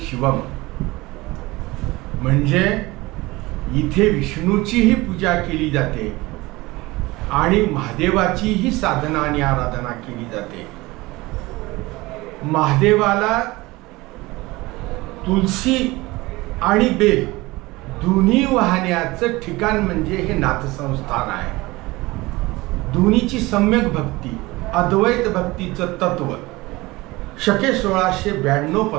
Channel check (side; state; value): left; quieter; 21.1 dB